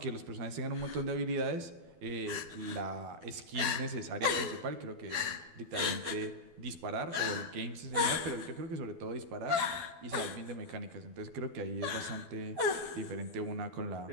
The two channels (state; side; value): late; left; 12 ms